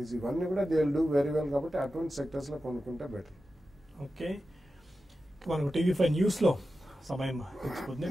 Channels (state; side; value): normal; both; correlation 0.92